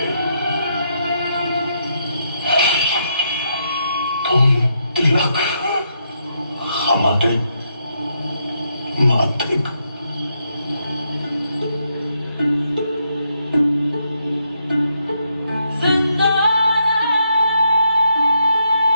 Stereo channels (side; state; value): both; inverted; correlation -0.79